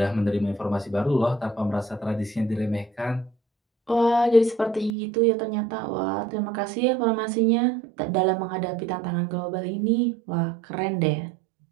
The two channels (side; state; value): left; drops out; at 5.0 s